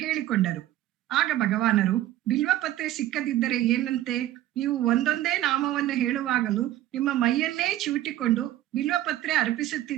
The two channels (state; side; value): quieter; left; 14.0 dB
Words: ಹೇಳಿಕೊಂಡರು. ಆಗ ಭಗವಾನರು, ಬಿಲ್ವ ಪತ್ರೆ ಸಿಕ್ಕದಿದ್ದರೆ ಏನಂತೆ, ನೀವು ಒಂದೊಂದೇ ನಾಮವನ್ನು ಹೇಳುವಾಗಲೂ ನಿಮ್ಮ ಮೈಯನ್ನೇ ಚಿವುಟಿಕೊಂಡು ಬಿಲ್ವ ಪತ್ರೆ